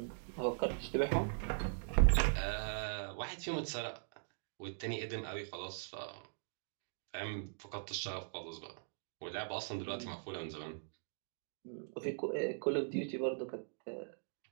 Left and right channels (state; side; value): silent; left; digital silence